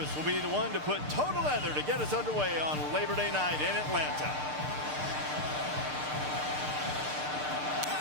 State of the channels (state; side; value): late; left; 6.7 ms